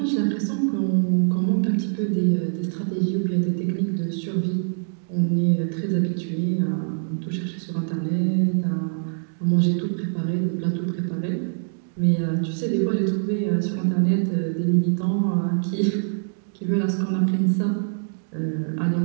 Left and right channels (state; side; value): silent; left; digital silence